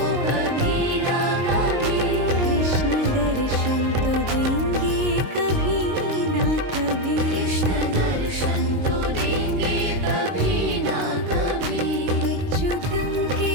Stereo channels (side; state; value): left; late; 22 ms